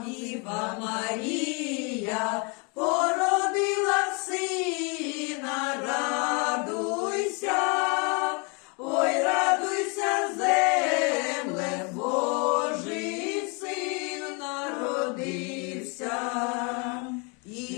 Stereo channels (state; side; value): quieter; right; 33.3 dB